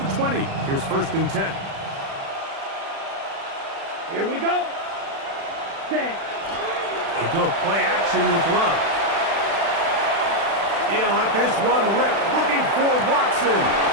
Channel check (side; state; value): left; late; 36 ms